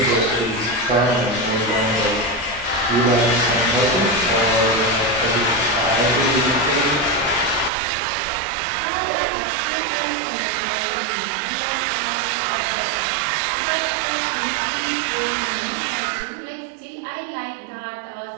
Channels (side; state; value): left; drops out; at 7.7 s